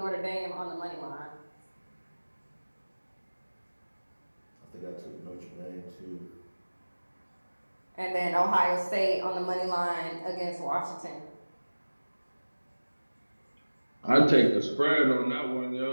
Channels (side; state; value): both; inverted; correlation -1.00